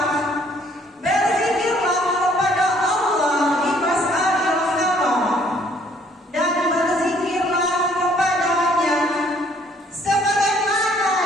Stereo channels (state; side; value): normal; both; correlation 0.62